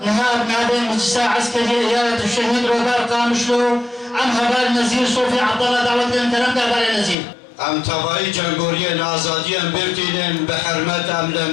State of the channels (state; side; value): drops out; right; at 7.2 s